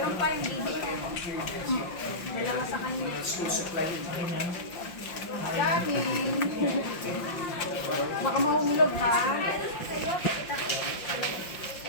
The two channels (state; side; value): late; right; 5.6 ms